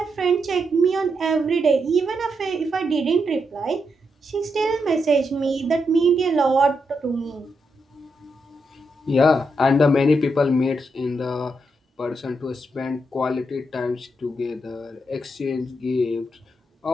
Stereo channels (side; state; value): both; normal; correlation 0.82